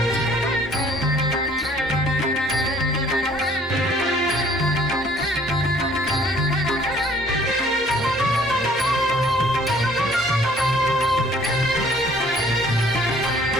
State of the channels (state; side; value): normal; both; correlation 0.57